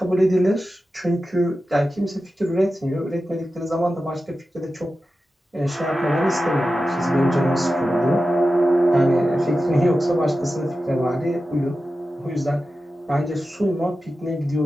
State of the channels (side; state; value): both; normal; correlation 0.93